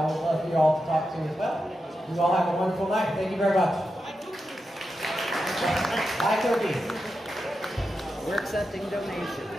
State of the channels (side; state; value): both; normal; correlation 0.89